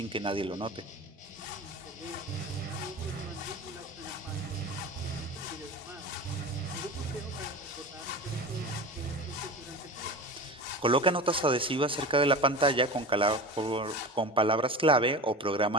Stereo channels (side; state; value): both; normal; correlation 0.31